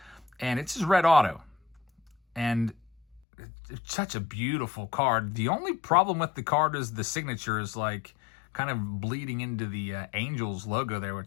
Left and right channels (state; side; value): drops out; right; at 3.2 s